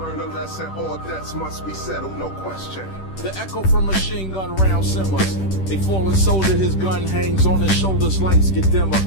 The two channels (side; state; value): right; late; 10 ms